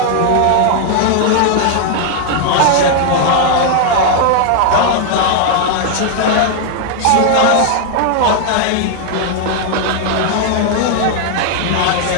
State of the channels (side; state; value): both; different; correlation 0.00